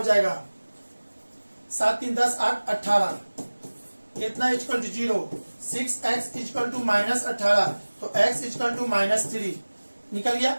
जाएगा 7 3 10 8 18, इतना is equal to 0। 6x is equal to -18, तो x इजकल टू -3 निकल गया।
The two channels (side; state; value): both; inverted; correlation -1.00